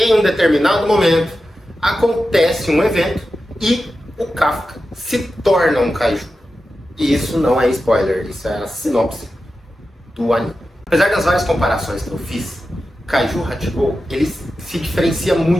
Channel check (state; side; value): normal; both; correlation 0.92